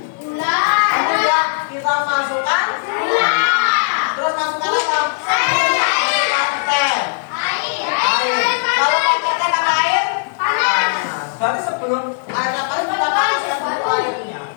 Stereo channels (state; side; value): silent; right; digital silence